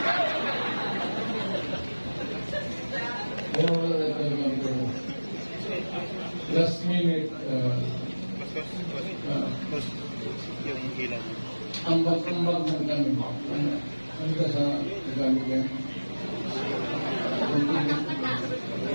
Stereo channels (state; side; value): inverted; both; correlation -1.00